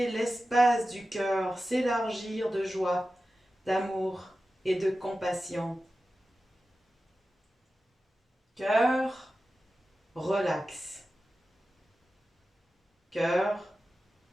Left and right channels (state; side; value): normal; both; correlation 0.94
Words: l'espace du cœur s'élargir de joie, d'amour et de compassion. Cœur, relax. Cœur,